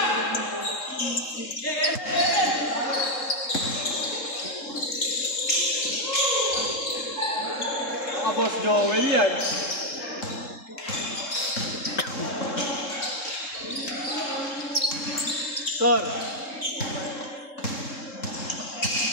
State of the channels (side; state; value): right; late; 3.7 ms